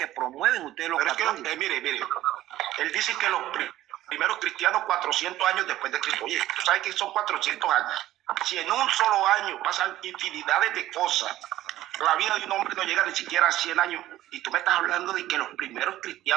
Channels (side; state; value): left; quieter; 14.4 dB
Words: promueven ustedes los católicos. Es que, mire, él dice que los primeros cristianos 400 años después de Cristo. Oye, tú sabes que son 400 años. Si en un solo año pasan infinidades de cosas, la vida de un hombre no llega ni siquiera a 100 años. Y tú me estás hablando de que los primeros